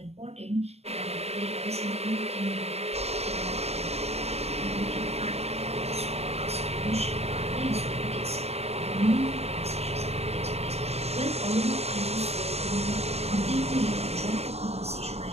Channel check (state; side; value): late; left; 0.30 ms